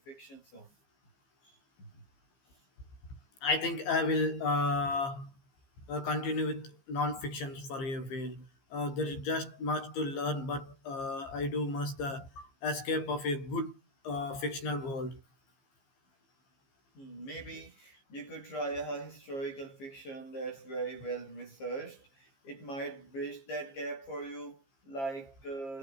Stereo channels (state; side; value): late; right; 15 ms